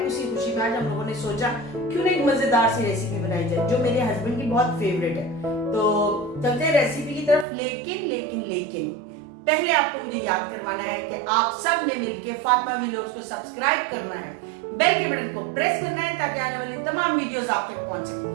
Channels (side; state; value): left; drops out; at 7.5 s